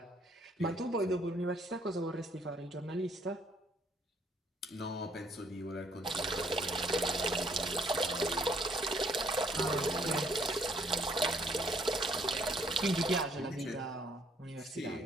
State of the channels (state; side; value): normal; both; correlation 0.66